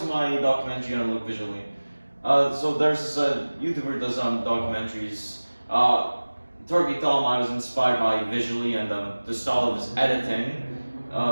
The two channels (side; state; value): both; inverted; correlation -1.00